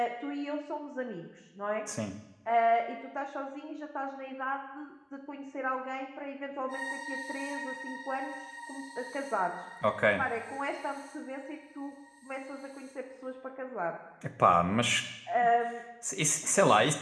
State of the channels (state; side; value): identical; both; correlation 1.00